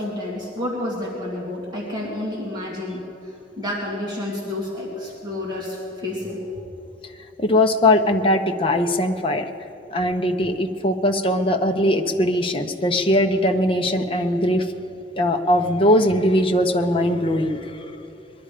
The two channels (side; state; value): both; normal; correlation 0.43